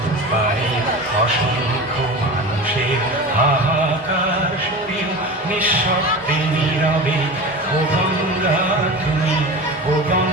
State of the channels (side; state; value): both; normal; correlation 0.31